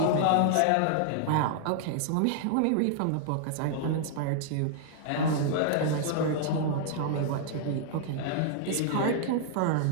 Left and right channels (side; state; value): both; different; correlation -0.01